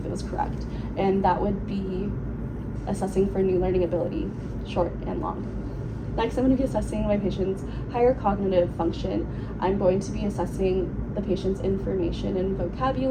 it was correct. And that would be assessing for new learning ability, short and long. Next, I'm going to be assessing my patient's higher cognitive function. I'm going to be assessing the patient's information and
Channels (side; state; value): both; identical; correlation 1.00